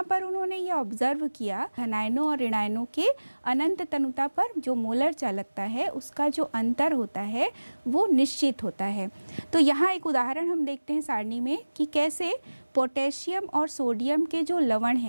पर उन्होंने ये ऑब्जर्व किया धनायनों और ऋणायनों के अनंत तनुता पर जो मोलर चालकता है उसका जो अंतर होता है वो निश्चित होता है। तो यहाँ एक उदाहरण हम देखते हैं सारणी में कि कैसे पोटेशियम और सोडियम के जो लवण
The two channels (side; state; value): both; inverted; correlation -1.00